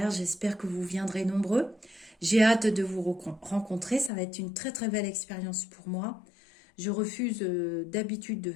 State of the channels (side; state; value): right; drops out; at 4.1 s